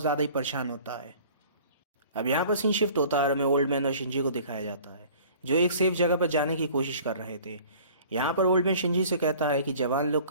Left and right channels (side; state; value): both; inverted; correlation -0.48